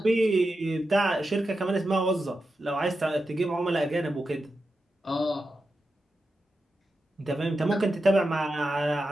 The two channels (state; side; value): normal; both; correlation 0.90